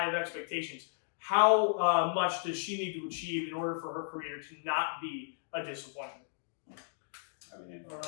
of expectations, how much does she need to achieve in order for her career to not be a disappointment?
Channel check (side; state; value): right; silent; digital silence